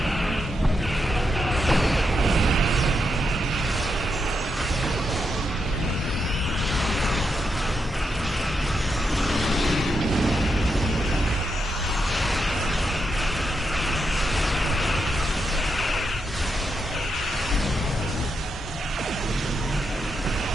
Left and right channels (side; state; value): both; normal; correlation 0.83